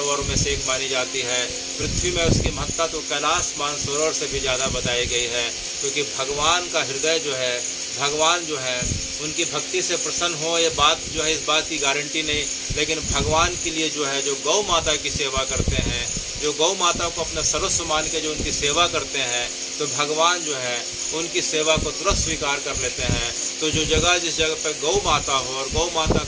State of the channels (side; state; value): both; identical; correlation 1.00